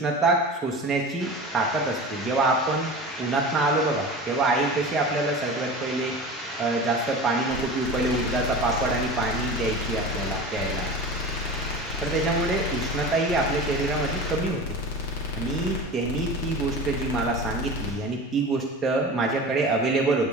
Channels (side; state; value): both; normal; correlation 0.33